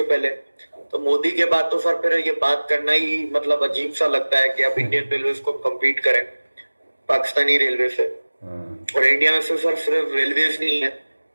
पहले। तो मोदी के बाद तो सर फिर ये बात करना ही मतलब अजीब सा लगता है कि आप इंडियन रेलवे को कम्पीट करें पाकिस्तानी रेलवे से। और इंडिया में सिर्फ रेलवेज नहीं है,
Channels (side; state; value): both; inverted; correlation -1.00